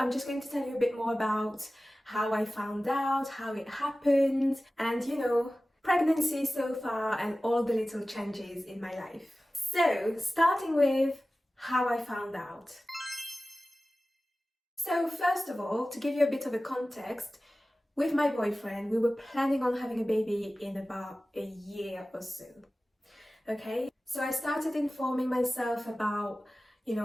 just going to tell you a bit more about how I found out, how it happened, and pregnancy so far and all the little changes in my life. So, starting with how I found out. So first of all, to give you a bit of a context, with my boyfriend, we were planning on having a baby in about a year or so. Okay, so I started informing myself about,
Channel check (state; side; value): normal; both; correlation 0.96